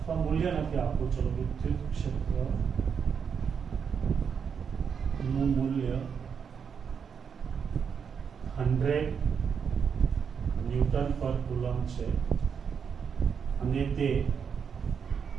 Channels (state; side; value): quieter; left; 6.8 dB